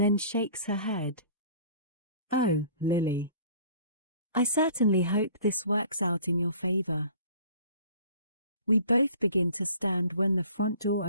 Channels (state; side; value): inverted; both; correlation -0.49